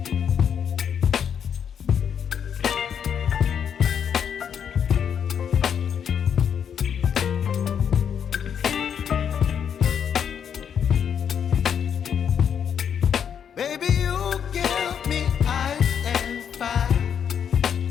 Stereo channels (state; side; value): quieter; right; 8.0 dB